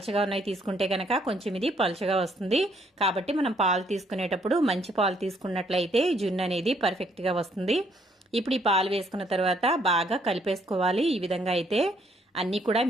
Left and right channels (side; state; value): both; normal; correlation 0.68